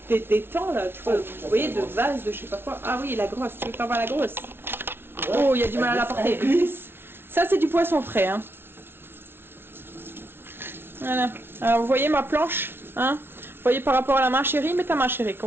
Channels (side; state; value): left; late; 0.11 ms